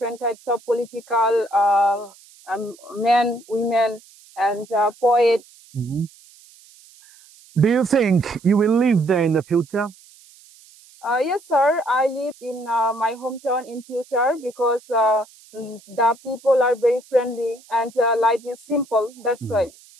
types of political men, women, and poets. Mm-hmm. Do you think you will live there in the future? Yes, sir. I live in my hometown in future because the people are very friendly and life is simple. That's why.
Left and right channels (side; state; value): right; noise; hiss, 25 dB below the sound